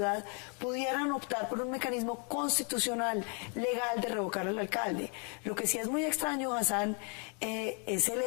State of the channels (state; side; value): quieter; right; 36.3 dB